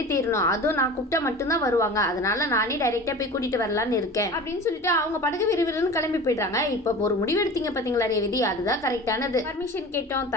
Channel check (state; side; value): normal; both; correlation 0.36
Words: தேரணும், அதுவும் நான் கூப்பிட்டா மட்டும்தான் வருவாங்க, அதனால நானே டைரக்டா போய் கூட்டிட்டு வரலான்னு இருக்கேன் அப்படின்னு சொல்லிட்டு அவங்க படகு விறுவிறுன்னு கிளம்பி போயிட்டாங்க. இப்ப ஒரு முடிவு எடுத்தீங்க பாத்தீங்களா ரேவதி, அதுதான் கரெக்டானது. பர்மிஷன் கேட்டோம்